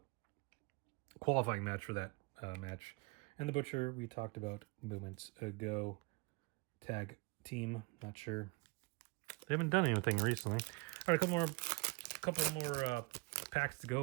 qualifying match for that match. And the Butcher, we talked about moments ago. Tag team, not sure. They haven't done anything recently. All right, a couple more packs to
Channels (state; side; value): quieter; left; 27.8 dB